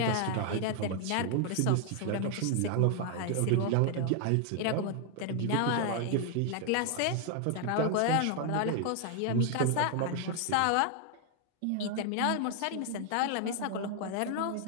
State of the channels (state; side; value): different; both; correlation 0.00